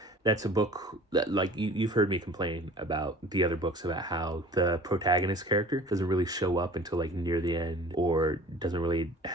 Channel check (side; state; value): both; normal; correlation 0.45